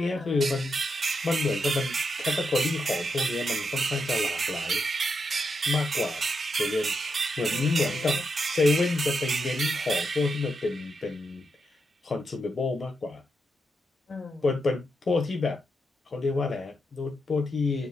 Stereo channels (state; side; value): normal; both; correlation 0.84